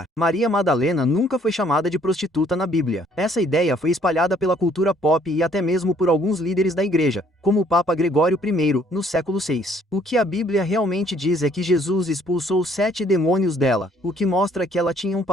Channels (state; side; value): normal; both; correlation 0.62